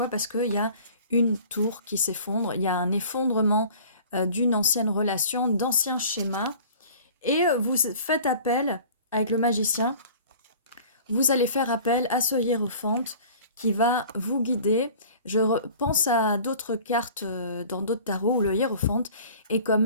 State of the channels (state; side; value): inverted; both; correlation -0.45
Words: Parce qu'il y a une tour qui s'effondre. Il y a un effondrement d'une ancienne relation, d'anciens schémas. Et vous faites appel avec le magicien. Vous allez faire appel à ce hiérophante qui va vous guider. Je pense à d'autres cartes dans d'autres tarots où le hiérophante est quand